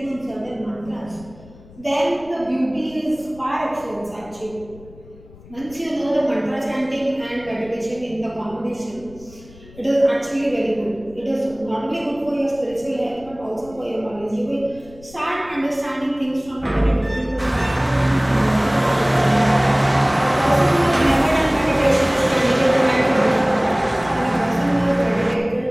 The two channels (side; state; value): left; noise; rumble, 22 dB below the sound